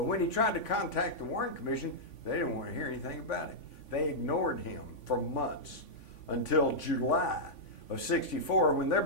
when he tried to contact the Warren Commission, they didn't want to hear anything about it. They ignored him for months until July of '64, when they're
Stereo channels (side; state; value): right; late; 3.5 ms